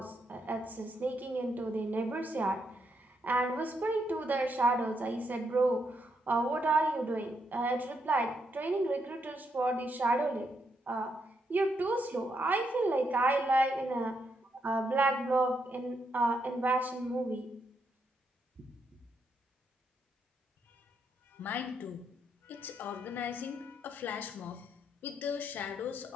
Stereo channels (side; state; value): both; normal; correlation 0.79